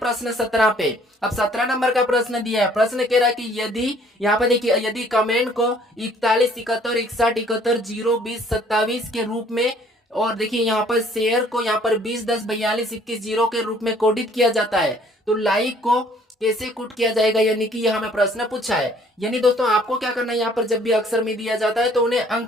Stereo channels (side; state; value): both; normal; correlation 0.59